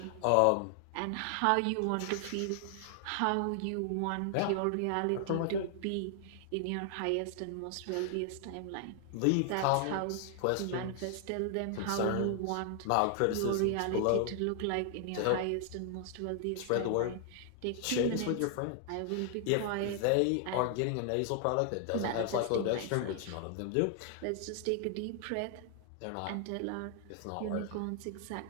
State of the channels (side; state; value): both; different; correlation 0.00